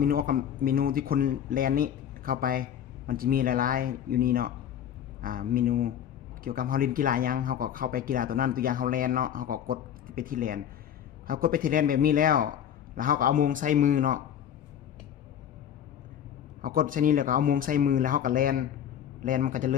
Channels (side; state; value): right; quieter; 9.6 dB